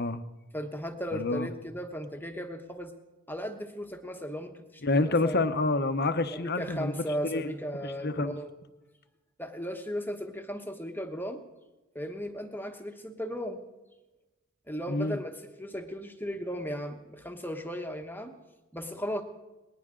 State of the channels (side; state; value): both; normal; correlation 0.40